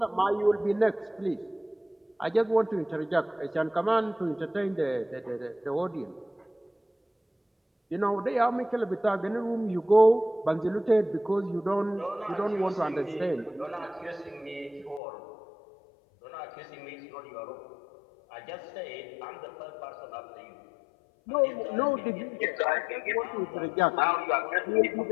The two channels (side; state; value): right; drops out; at 15.0 s